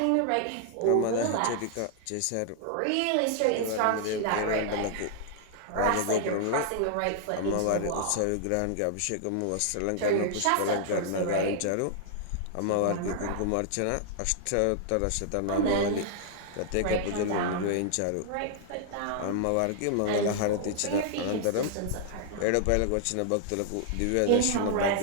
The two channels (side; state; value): both; different; correlation -0.01